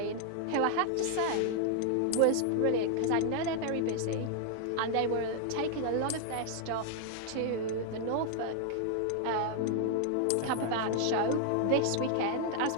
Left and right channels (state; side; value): different; both; correlation 0.00